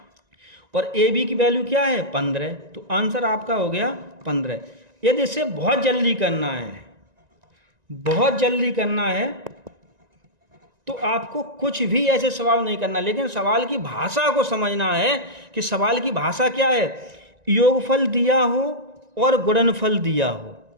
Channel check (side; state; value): left; late; 1.9 ms